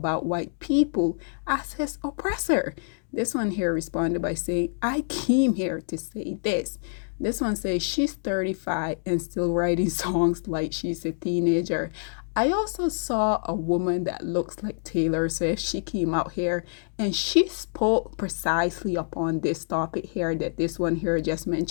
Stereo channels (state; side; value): silent; right; digital silence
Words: white people as his oppressor. This one here responded by saying, I came here to say this. This one says she's 35 and still writing songs like she's a teenager. I also saw a woman that looks like Taylor Swift. She came out here and she spoke precisely upon this topic here that this one here just